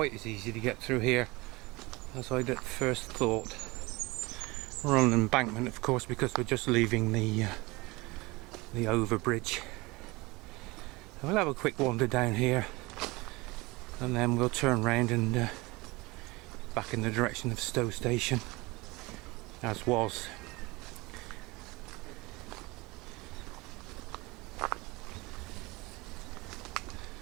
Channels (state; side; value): quieter; left; 23.3 dB